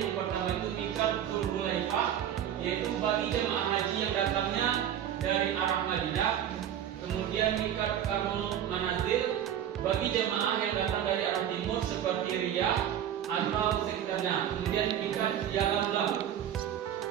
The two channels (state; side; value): quieter; left; 10.1 dB